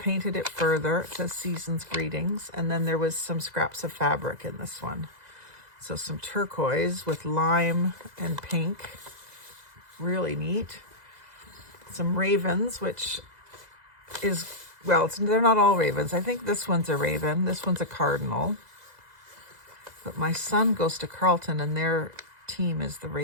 it further. It says Season's Greetings, and then there was some scraps of fabric in this one. So some turquoise with lime and pink, really neat. Some ravens, which is, well, they're not all ravens. I think this one's a raven. This one's a cardinal. But my son goes to Carleton, and their team is the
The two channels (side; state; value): left; late; 2.0 ms